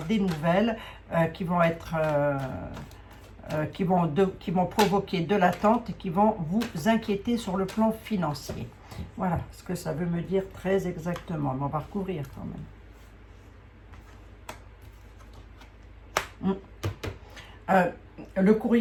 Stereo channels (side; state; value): both; identical; correlation 1.00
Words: des nouvelles qui vont être, qui vont provoquer de l'attente et qui vont vous inquiéter sur le plan financier. Voilà ce que ça veut me dire très exactement. Mais on va recouvrir quand même. Le